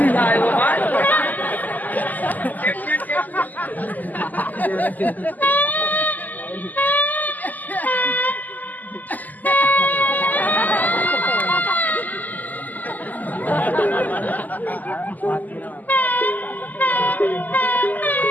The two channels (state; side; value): late; right; 0.082 ms